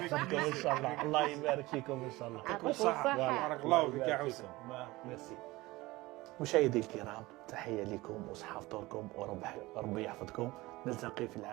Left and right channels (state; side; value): quieter; left; 20.2 dB